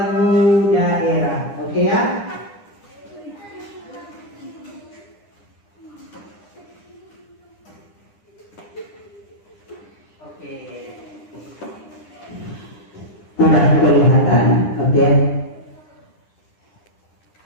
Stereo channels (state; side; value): late; right; 9.9 ms